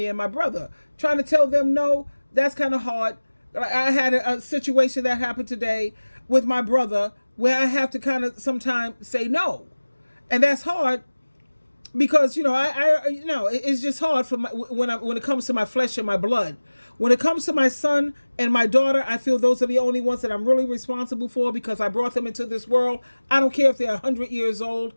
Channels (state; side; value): inverted; both; correlation -1.00